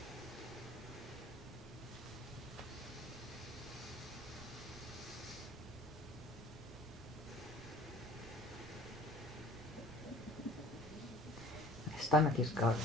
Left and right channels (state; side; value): normal; both; correlation 0.48